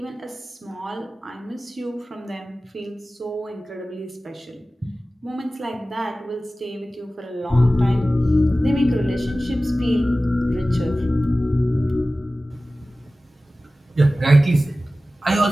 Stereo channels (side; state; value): both; normal; correlation 0.96